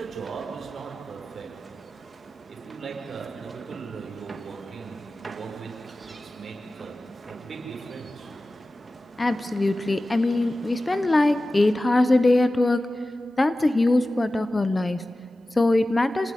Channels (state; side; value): normal; both; correlation 0.95